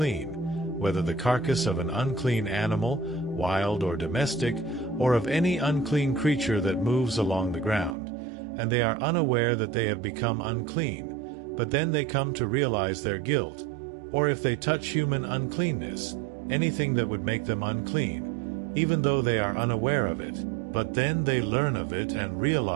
whether the carcass of an unclean animal, wild or domestic, or of any unclean creature that moves along the ground, and they are unaware that they have become unclean, but then they come to realize their guilt, or if they touch human uncleanness, anything that would make them unclean, even though they are unaware of it, but then they learn of it and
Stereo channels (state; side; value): drops out; left; at 8.0 s